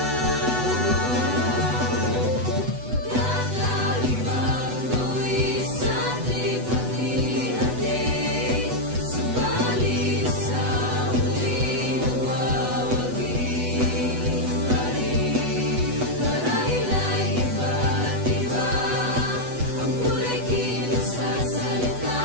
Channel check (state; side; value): late; left; 8.1 ms